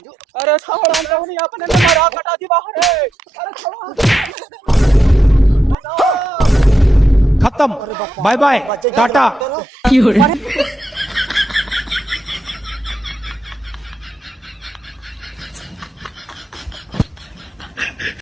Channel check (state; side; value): normal; both; correlation 0.84